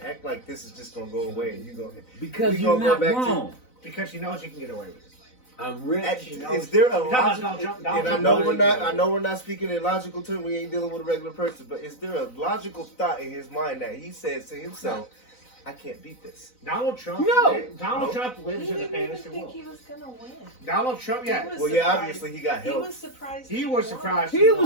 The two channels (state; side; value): late; right; 4.0 ms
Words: act like this is just gonna go away and you go? Because we you're gonna go not back to- wrong. Because he knows he can get away with it. I'm rich. Is there a You're talking logical? about And Donald I Trump. know we're not. I know we're not speaking in logical terms. We ain't dealing with a regular person. But is there a logical thought in his mind that he says to himself, "I can't beat this"? Donald Trump. No. Donald No. Trump He lives in a didn't even fantasy think world. he was gonna win. Donald Trump. He Yeah. was Well, yeah, surprised. obviously he got He help. was surprised. He was surprised. He won.